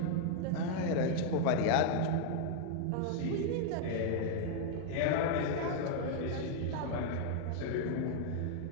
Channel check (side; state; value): both; different; correlation 0.00